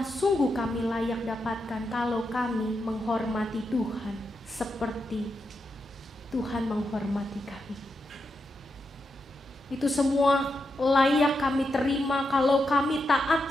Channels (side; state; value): both; normal; correlation 0.85